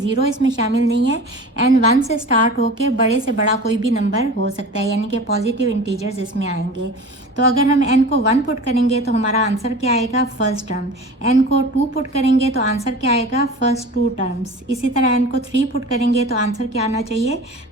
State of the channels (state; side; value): normal; both; correlation 0.37